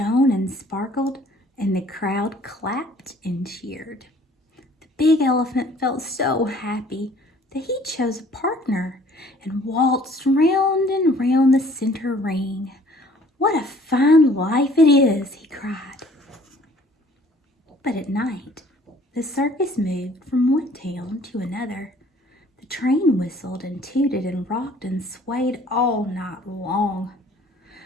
and sparkled, and the crowd clapped and cheered. The big elephant felt so happy that he chose a partner and waltzed round and round the center ring. "What a fine life it is," he cried. But at night, the circus moved from one town to another. The train whistled and tooted and rocked and swayed all night long.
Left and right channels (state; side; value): normal; both; correlation 0.55